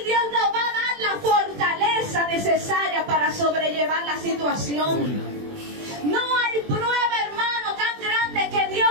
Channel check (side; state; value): left; late; 20 ms